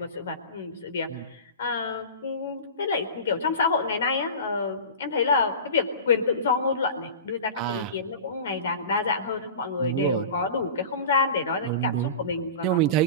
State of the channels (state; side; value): inverted; both; correlation -0.33